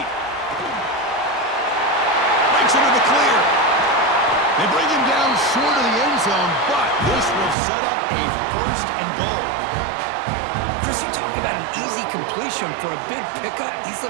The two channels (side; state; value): left; drops out; at 7.6 s